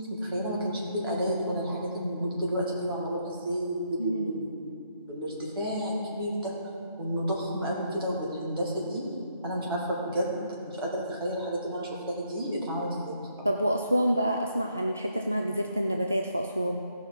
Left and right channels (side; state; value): both; inverted; correlation -0.72